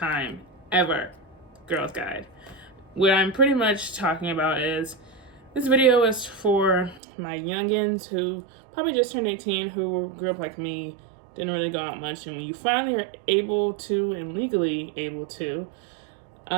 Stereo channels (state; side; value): drops out; left; at 7.0 s